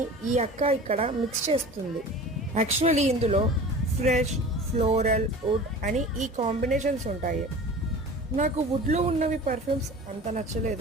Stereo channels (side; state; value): both; normal; correlation 0.39